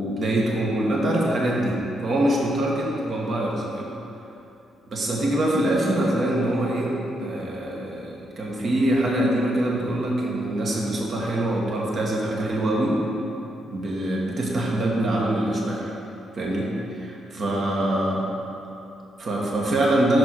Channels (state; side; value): normal; both; correlation 0.80